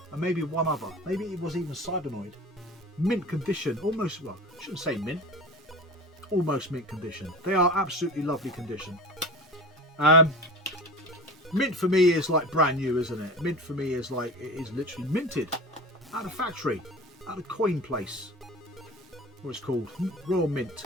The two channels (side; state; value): both; normal; correlation 0.33